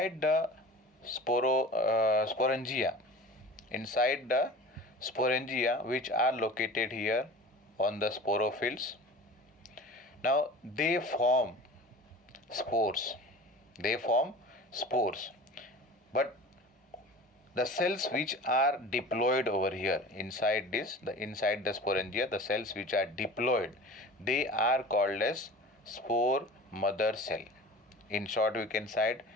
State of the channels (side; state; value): both; normal; correlation 0.38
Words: the sporangia, which are located here on the sporophylls, now they form spores. But the cells which are diploid over here inside the sporangia, the cells which are diploid, they are called as spore mother cell. In short, you can write